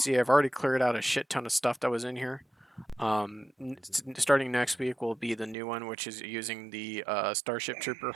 I've already cleared out a shit ton of stuff that was in here. Starting next week will be the new one, which is using the Starship Trooper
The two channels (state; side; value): drops out; left; at 5.6 s